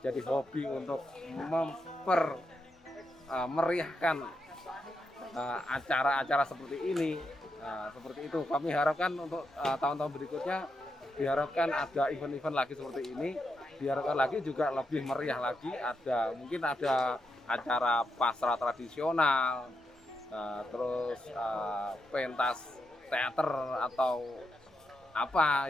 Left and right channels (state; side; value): normal; both; correlation 0.84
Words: jadi hobi untuk meriahkan acara-acara seperti ini. Seperti itu kami harapkan untuk tahun-tahun berikutnya, diharapkan ada event-event lagi seperti ini, diharapkan lagi juga lebih meriah lagi, mungkin ada acara pasrah tradisional, terus pentas teater atau